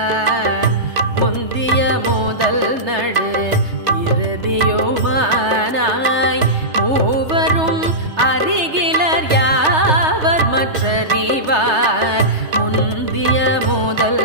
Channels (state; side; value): late; left; 3.3 ms